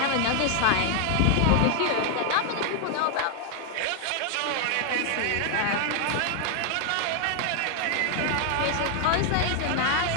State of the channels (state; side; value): different; both; correlation 0.00